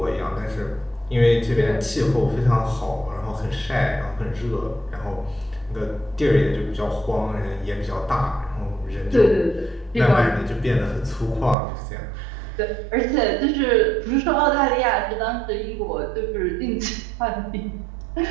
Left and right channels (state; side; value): drops out; left; at 11.6 s